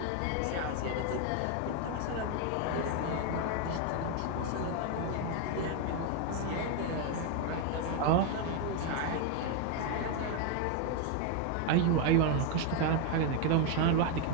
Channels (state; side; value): different; both; correlation 0.01